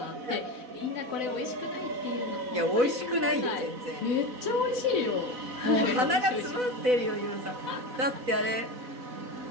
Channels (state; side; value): late; left; 4.0 ms